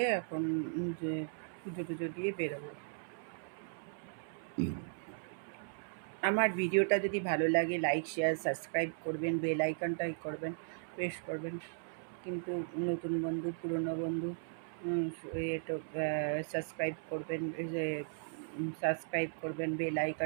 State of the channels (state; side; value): silent; left; 53 dB below the other